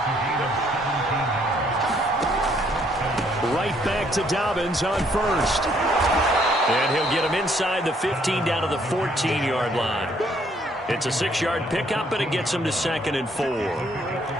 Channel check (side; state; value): both; normal; correlation 0.67